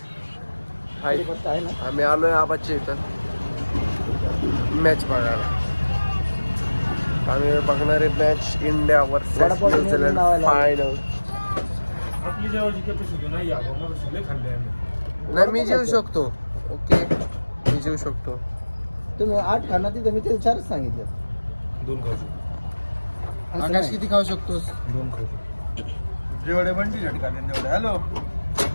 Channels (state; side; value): inverted; both; correlation -1.00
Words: हाय आम्ही आलोय आबाच्या इथं मॅच बघायला. आम्ही बघणार आहे match India versus New Zealand final. आपली जेवायची कॅपॅसिटी नाही आहे. मला सगळे खाल्ले आम्ही. नाही मी जेवू शकतो. ओके मी जेवू शकतो. तुम्ही 8 खाना तिथं मी ते 4 सांगितलं. 2 खाऊ शकतो. आकाश किती खाऊ शकतोस. 2 खाऊ शकतो. जेवढे बंटी झटका तेवढे. हॅलो